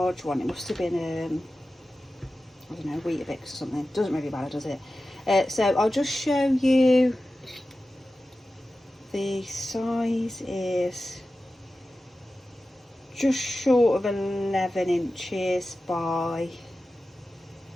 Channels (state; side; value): normal; both; correlation 0.94